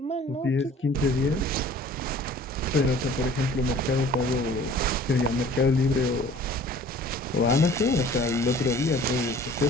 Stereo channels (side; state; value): both; normal; correlation 0.49